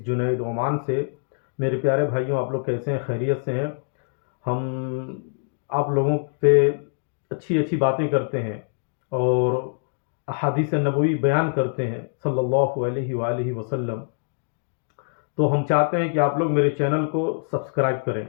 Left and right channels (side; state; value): right; silent; digital silence